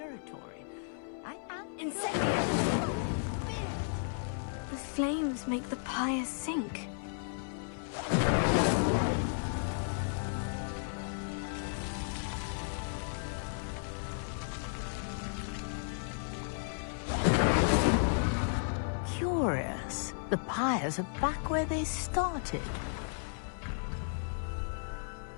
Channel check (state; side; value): silent; right; 55 dB below the other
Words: I am curious. Merlin's beard! The flames make the pyre sink. Curious. The pyres are back where they started.